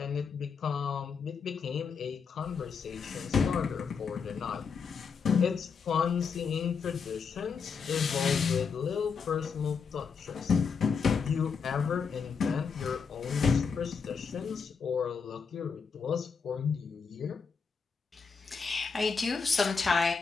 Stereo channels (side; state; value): right; quieter; 5.6 dB